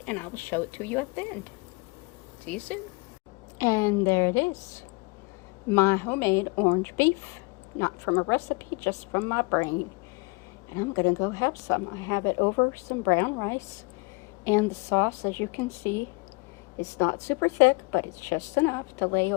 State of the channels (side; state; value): right; quieter; 29.1 dB